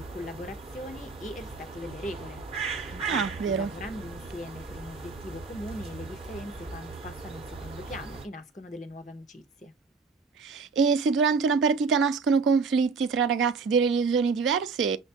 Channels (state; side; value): quieter; left; 4.7 dB